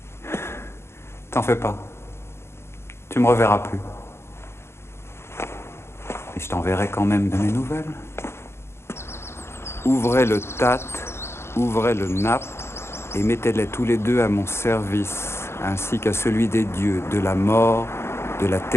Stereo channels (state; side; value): late; right; 0.12 ms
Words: T'en fais pas. Tu me reverras plus. Et je t'enverrai quand même de mes nouvelles. Ouvrez le tat, ouvrez le nappe, et mettez-les tous les deux à mon service, ainsi qu'à celui des dieux, de la mort, de la